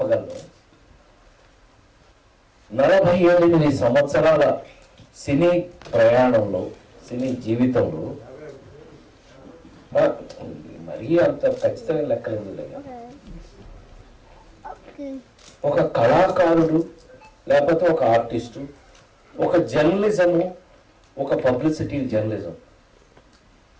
48 సంవత్సరాల సినీ ప్రయాణంలో, సినీ జీవితంలో మరీ అంత ఖచ్చితమైన లెక్కలేదు. ఒక కళాకారుడు లేకపోతే ఒక ఆర్టిస్టు, ఒక జర్నలిజము, ఒక పబ్లిసిటీ జర్నలిజం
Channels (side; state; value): both; identical; correlation 1.00